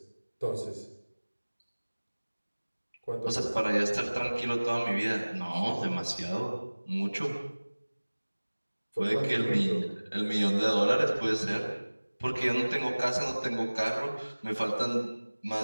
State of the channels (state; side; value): inverted; both; correlation -1.00